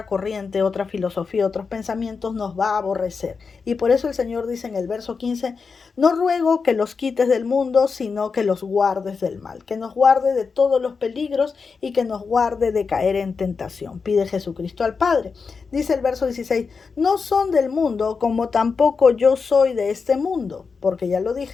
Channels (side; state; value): right; quieter; 5.1 dB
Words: corriente, otra filosofía, otros pensamientos, nos va a aborrecer. Y por eso el Señor dice en el verso 15, no ruego que los quites del mundo, sino que los guardes del mal, que nos guarde de todos los peligros y que nos guarde de caer en tentación. Pide Jesucristo al Padre. Dice el verso 16, no son del mundo como tampoco yo soy de este mundo, porque ya lo